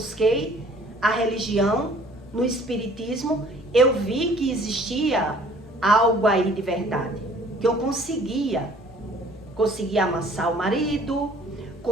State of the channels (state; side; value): normal; both; correlation 0.55